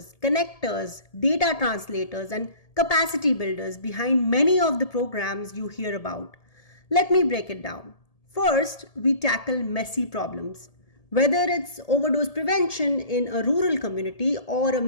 connectors, data translators, and capacity builders behind many of the programs you hear about. Let me break it down. First, we tackle messy problems. Whether it's overdose prevention in a rural community or a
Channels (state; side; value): late; right; 1.7 ms